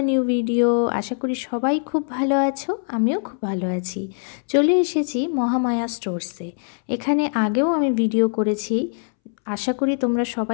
a new video. আশা করি সবাই খুব ভালো আছো, আমিও খুব ভালো আছি। চলে এসেছি মহামায়া স্টোরসে। এখানে আগেও আমি ভিডিও করেছি, আশা করি তোমরা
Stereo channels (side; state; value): right; silent; 64 dB below the other